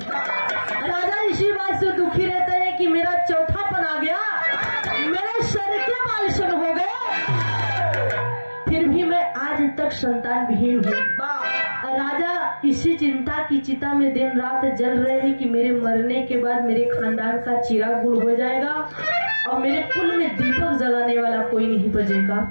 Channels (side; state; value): both; inverted; correlation -1.00